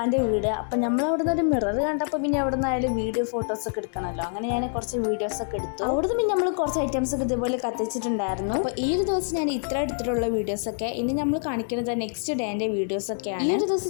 വീട്. അപ്പോൾ നമ്മളവിടെ നിന്ന് ഒരു മിറർ കണ്ടപ്പോൾ പിന്നെ അവിടെ നിന്നായാലും വീഡിയോ ഫോട്ടോസൊക്കെ എടുക്കണമല്ലോ. അങ്ങനെ ഞാൻ കുറച്ച് വീഡിയോസൊക്കെ എടുത്തു. അവിടുന്ന് പിന്നെ നമ്മൾ കുറച്ച് ഐറ്റംസൊക്കെ ഇതുപോലെ കത്തിച്ചിട്ടുണ്ടായിരുന്നു. അപ്പോൾ ഈ ഒരു ദിവസം ഞാൻ ഇത്ര എടുത്തിട്ടുള്ള വീഡിയോസൊക്കെ ഇനി നമ്മൾ കാണിക്കുന്നത് നെക്സ്റ്റ് ഡേൻ്റെ വീഡിയോസൊക്കെയാണ്. ഈ ഒരു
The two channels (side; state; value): right; silent; 61 dB below the other